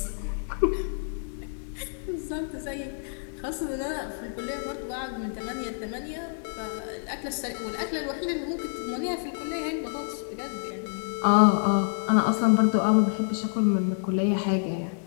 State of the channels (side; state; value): right; silent; 59 dB below the other